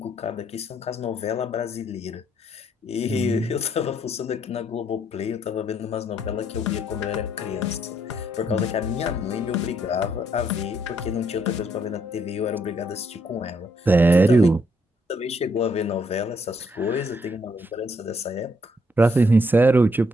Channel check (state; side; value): normal; both; correlation 0.72